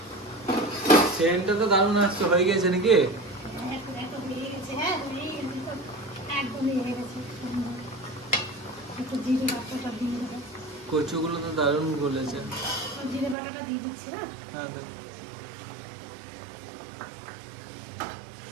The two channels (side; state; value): left; drops out; at 13.4 s